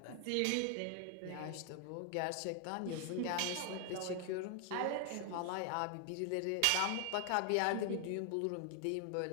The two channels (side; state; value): both; different; correlation 0.00